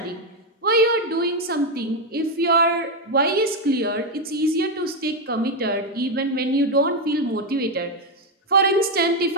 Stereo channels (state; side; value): normal; both; correlation 0.05